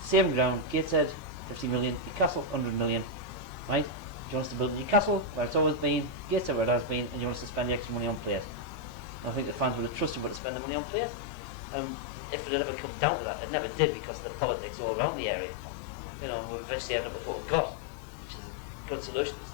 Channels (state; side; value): drops out; right; at 10.4 s